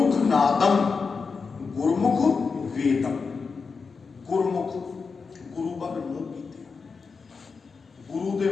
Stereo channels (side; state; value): right; quieter; 5.0 dB